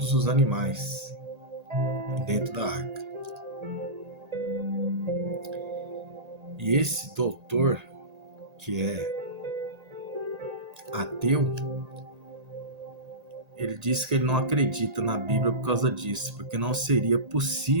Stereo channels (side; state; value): left; late; 1.8 ms